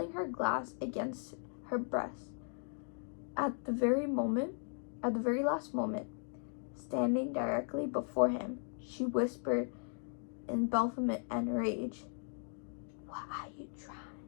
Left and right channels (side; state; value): right; silent; 53 dB below the other